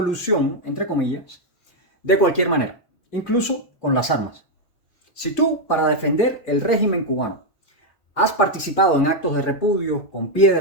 entre comillas, de cualquier manera, incluso con las armas. Si tú, para defender el régimen cubano, has participado en actos de repudio con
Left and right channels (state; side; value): late; right; 3.6 ms